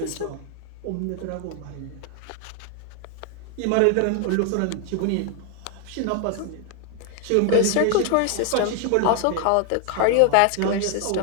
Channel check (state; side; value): different; both; correlation 0.00